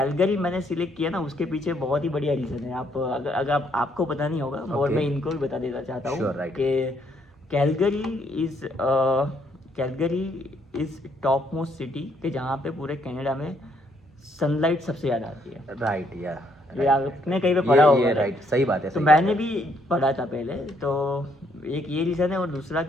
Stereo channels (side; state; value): both; normal; correlation 0.71